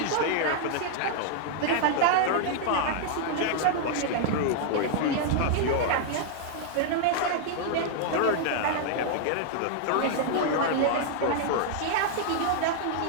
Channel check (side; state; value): both; different; correlation -0.01